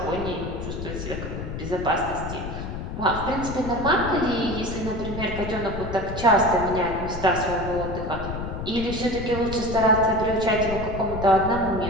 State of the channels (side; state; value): left; noise; rumble, 7 dB below the sound